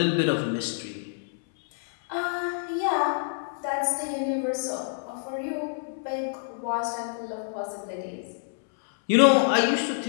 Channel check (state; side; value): silent; right; 60 dB below the other